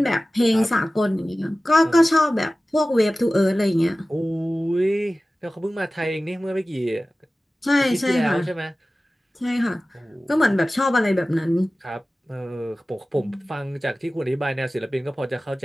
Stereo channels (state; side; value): normal; both; correlation 0.96